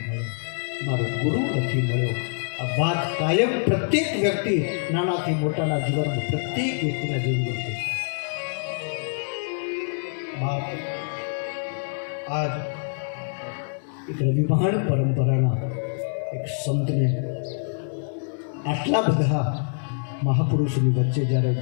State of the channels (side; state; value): right; silent; digital silence